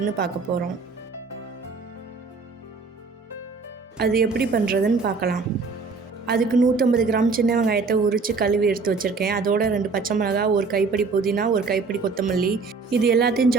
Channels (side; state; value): left; quieter; 4.4 dB